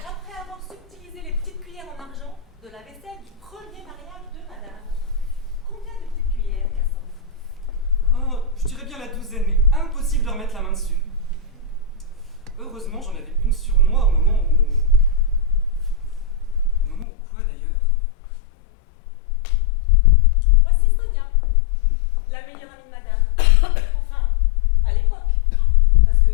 avoir subtilisé les petites cuillères en argent de la vaisselle du premier mariage de madame. Combien de petites cuillères, Cassandre? Oh, je dirais bien la douzaine, mais impossible de remettre la main dessus. Heureusement, j'en avais une sur moi au moment où... Au moment où quoi, d'ailleurs? Voici Sonia, la meilleure amie de madame. Enfin, à l'époque. Parce que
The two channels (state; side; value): drops out; right; at 17.1 s